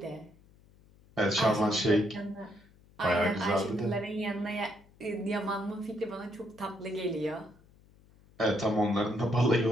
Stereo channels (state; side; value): noise; left; hum, 28 dB below the sound